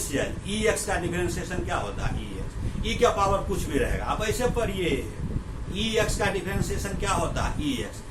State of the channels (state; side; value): identical; both; correlation 1.00